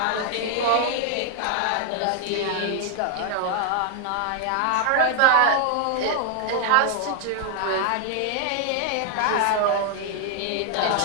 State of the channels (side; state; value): both; different; correlation 0.00